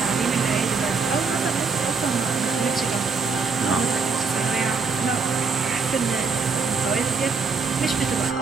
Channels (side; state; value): left; quieter; 4.8 dB